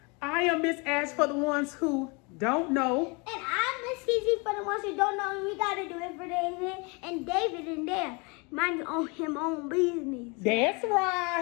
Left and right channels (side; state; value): right; quieter; 30.2 dB